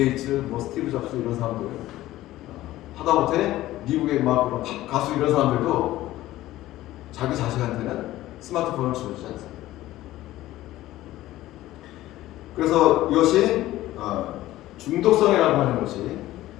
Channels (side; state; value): right; quieter; 15.6 dB